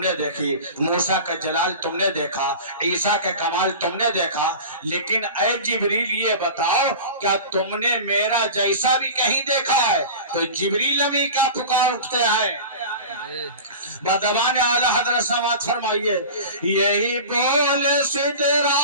देखी, मूसा का जलाल तुमने देखा, ईसा के कमाल तुमने देखा। लेकिन ऐ जिब्रील ये बताओ क्या तुमने मेरा जैसा भी कहीं देखा है? तो जिब्रील अभी क्या पुकार उठते हैं बदबान आला हजरत समात फरमाइए यही बोल सिदरा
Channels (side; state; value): both; inverted; correlation -0.33